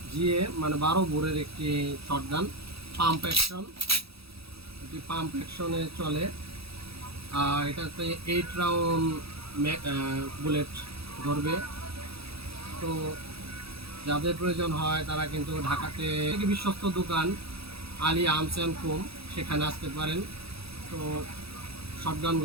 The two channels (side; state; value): left; late; 0.77 ms